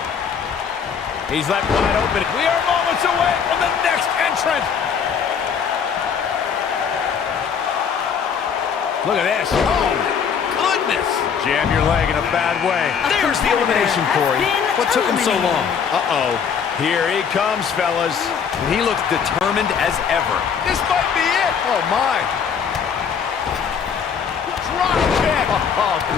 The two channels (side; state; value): right; quieter; 7.0 dB